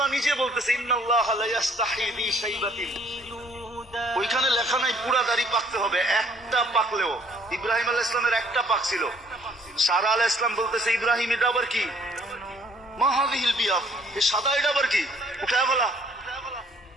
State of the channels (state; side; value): normal; both; correlation 0.60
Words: নিজে বলতেছে ইন্নাল্লাহ লা ইস্তাহি বি শাইবাতিন, ওইখানে লেখা নাই পুরা দাড়ি পাকতে হবে, একটা পাকলেও। ইব্রাহিম আলাইহিস সালামের একটা পাকছিল, সারা আলাইহিস সালাম বলতেছে ইব্রাহিম এটা আবার কি? মা হাযিহিল বিয়াদ, এই সাদা এটা আবার কি? উঠায় বলা।